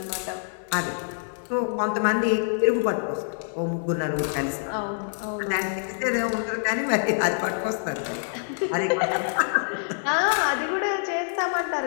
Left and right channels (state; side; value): silent; right; 55 dB below the other